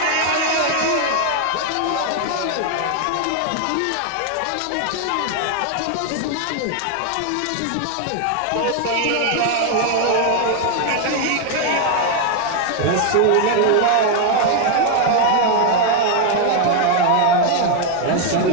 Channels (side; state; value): both; different; correlation 0.00